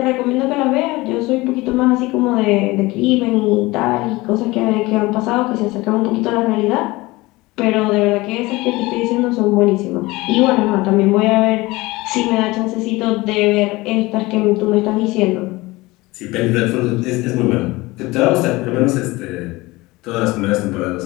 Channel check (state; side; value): quieter; right; 21.1 dB